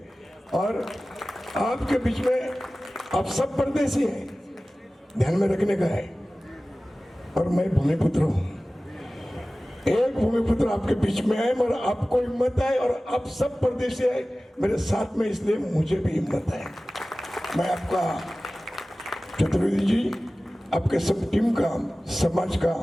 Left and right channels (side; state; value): both; normal; correlation 0.97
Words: और आपके बीच में आप सब परदेसी हैं, ध्यान में रखने का है। और मैं भूमिपुत्र हूँ, एक भूमिपुत्र आपके बीच में है, मगर आपको हिम्मत है और आप सब परदेसी है मेरे साथ में, इसलिए मुझे भी हिम्मत है। मैं आपका चतुर्वेदी जी, आपके सब टीम का, समाज का,